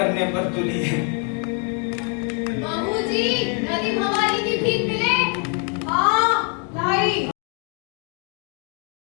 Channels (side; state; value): right; quieter; 39.7 dB